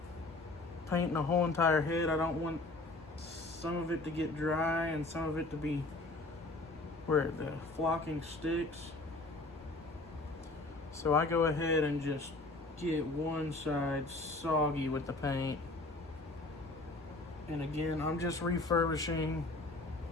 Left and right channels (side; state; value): right; quieter; 3.0 dB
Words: painting the whole entire head. I don't want some of it to get dry and some of it to be where the flocking sticks. So I go ahead and just get one side soggy with the paint. And again, I'm just refurbishing